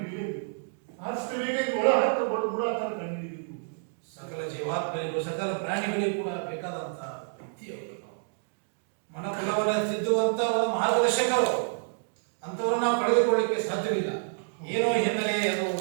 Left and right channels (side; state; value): left; silent; digital silence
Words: ಹಿಡಿಯಬೇಕು. ಆದಷ್ಟು ಬೇಗ ಇದು ಒಳ ಹತ್ತ ಗುಡಾತರ ಕಂಡು ಹಿಡಿಯಬೇಕು. ಸಕಲ ಜೀವಾತ್ಮರಿಗೂ ಸಕಲ ಪ್ರಾಣಿಗಳಿಗೂ ಕೂಡ ಬೇಕಾದಂತಹ ವ್ಯಕ್ತಿಯವರು. ಮನಕುಲವನ್ನು ತಿದ್ದುವಂತ ಒಂದು ಮಾರ್ಗದರ್ಶಕರು. ಅಂಥವ್ರು ನಾವು ಪಡೆದುಕೊಳ್ಳಿಕ್ಕೆ ಸಾಧ್ಯವಿಲ್ಲ. ಏನೋ ಹಿನ್ನೆಲೆ ಅದು